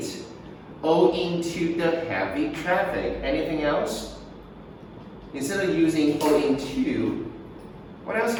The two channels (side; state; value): both; identical; correlation 1.00